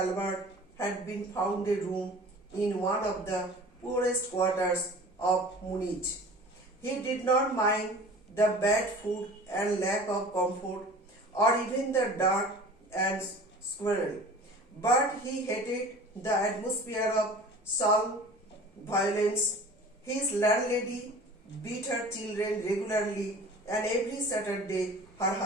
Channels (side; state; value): both; normal; correlation 0.42